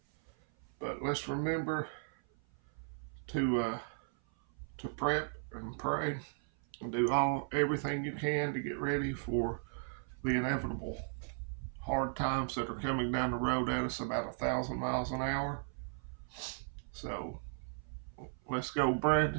But let's remember to prep and pray and do everything you can to get ready for the inevitable hard times that are coming down the road at us about 1,000 miles an hour. So let's go,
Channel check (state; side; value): silent; left; 54 dB below the other